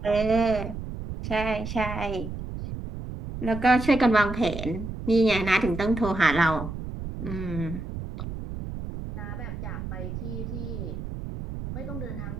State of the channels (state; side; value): noise; right; rumble, 7 dB below the sound